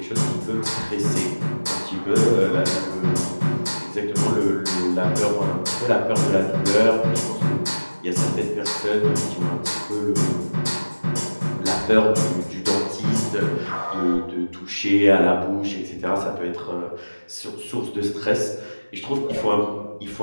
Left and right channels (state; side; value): inverted; both; correlation -1.00